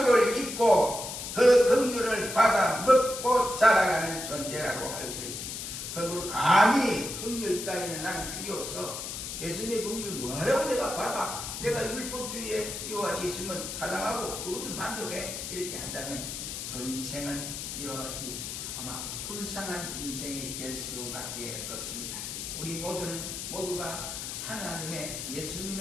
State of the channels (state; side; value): noise; left; hiss, 6 dB below the sound